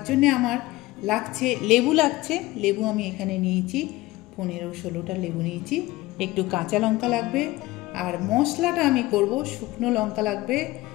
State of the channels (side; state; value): right; quieter; 19.0 dB